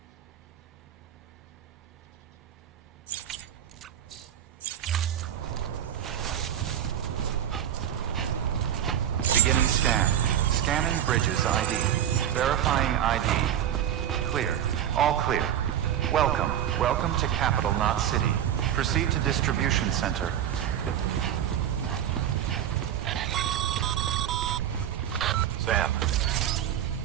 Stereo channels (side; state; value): left; quieter; 10.3 dB